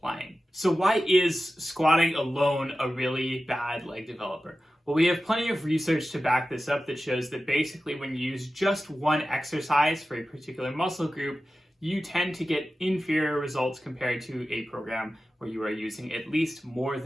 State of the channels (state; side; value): normal; both; correlation 0.94